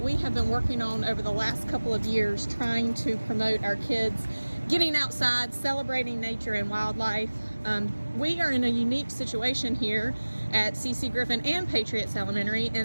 we have been working on over the last couple of years, trying to promote our kids getting outside, celebrating nature and wildlife. We are in a unique situation here at C.C. Griffin and Patriots Elementary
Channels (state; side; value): inverted; both; correlation -1.00